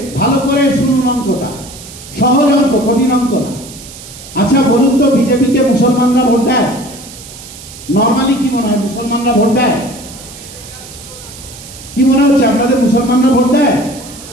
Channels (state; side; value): noise; right; hiss, 16 dB below the sound